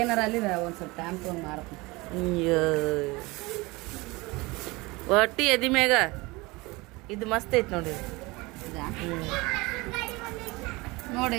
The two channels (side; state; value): left; quieter; 23.5 dB